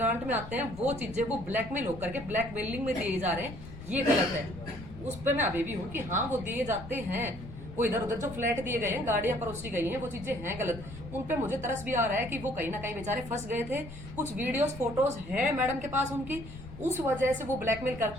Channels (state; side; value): noise; left; rumble, 13 dB below the sound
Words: में आते हैं वो चीजें वो ब्लैकमेल होकर के ब्लैकमेलिंग में दिए जा रहे हैं। ये गलत है। उस पे मैं अभी भी हूँ कि हाँ वो दिए जाते हैं, वो इधर उधर जो फ्लैट दिए गए हैं, गाड़ियां परोसी गई हैं, वो चीजें हैं गलत। उन पे मुझे तरस भी आ रहा है कि वो कहीं ना कहीं बेचारे फंस गए थे। कुछ वीडियोस फोटोज हैं मैडम के पास उनकी, उस वजह से वो ब्लैकमेल